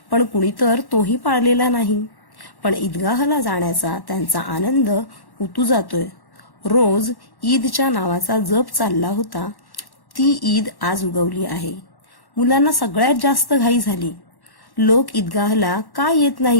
पण कुणी तर तोही पाळलेला नाही. पण ईदगाहला जाण्याचा त्यांचा आनंद उतू जातोय. रोज ईदच्या नावाचा जप चालला होता, ती ईद आज उगवली आहे. मुलांना सगळ्यात जास्त घाई झाली. लोक ईदगाहला का येत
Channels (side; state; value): right; late; 1.1 ms